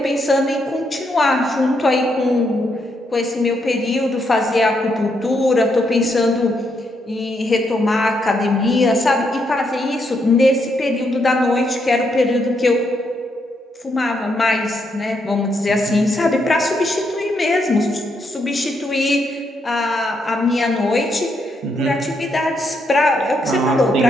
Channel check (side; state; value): both; normal; correlation 0.78